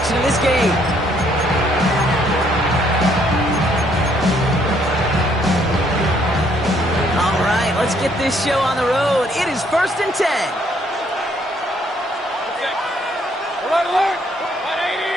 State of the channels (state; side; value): normal; both; correlation 0.67